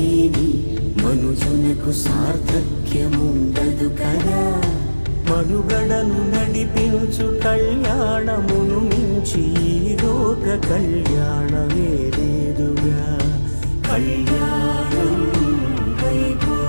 మనుజునకు సార్థక్యముండదు కదా. మనుగడను నడిపించు కళ్యాణమును మించి ఈ లోక కళ్యాణమే లేదుగా. కళ్యాణం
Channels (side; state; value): both; inverted; correlation -1.00